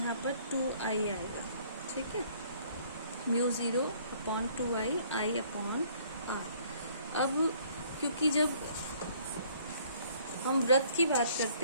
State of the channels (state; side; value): inverted; both; correlation -0.59